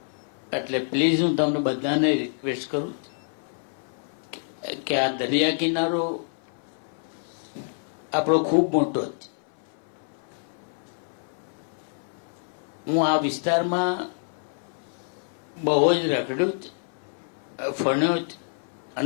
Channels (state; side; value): silent; right; 58 dB below the other